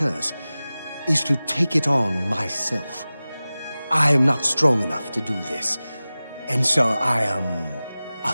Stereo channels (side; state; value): both; inverted; correlation -0.97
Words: is to take it on myself. I am not strong enough to do this, and so I am a